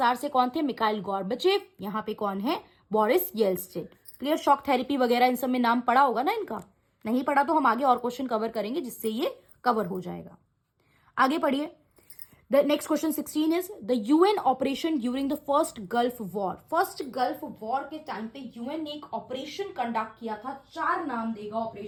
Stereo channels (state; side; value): identical; both; correlation 1.00